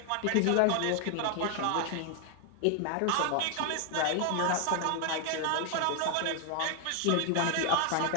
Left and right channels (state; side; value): different; both; correlation 0.00